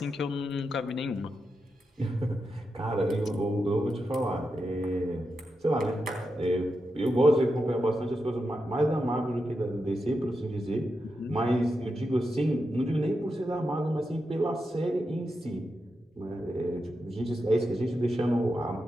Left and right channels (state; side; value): normal; both; correlation 0.87